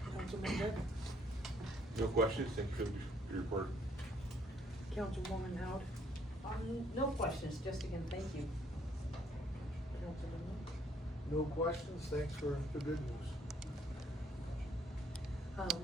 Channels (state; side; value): normal; both; correlation 0.66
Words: Councilman Dick? No questions, thank you for your report. Councilwoman Howard? No questions, just again, thank you. Councilman Lynch? No questions, thanks for the good news.